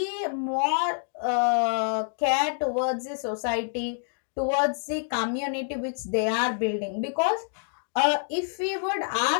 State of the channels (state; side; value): silent; right; digital silence